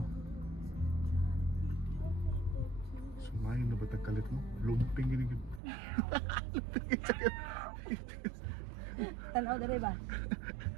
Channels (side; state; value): left; drops out; at 5.6 s